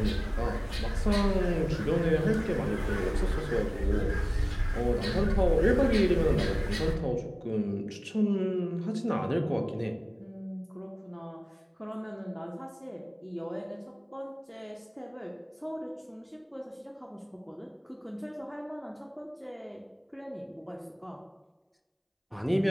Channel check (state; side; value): identical; both; correlation 1.00